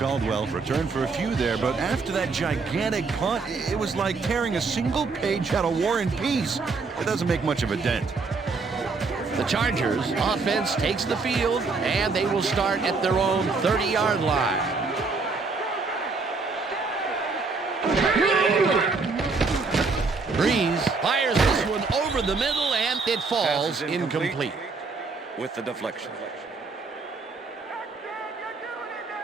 returned for a few there, but after that gigantic punt, it was like tearing a single page out of War and Peace. It doesn't make much of a dent. The Chargers offense takes the field, and they will start at their own 30-yard line. Breeze fires this one over the middle, and it falls incomplete. With the deflection.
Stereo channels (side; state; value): left; quieter; 4.3 dB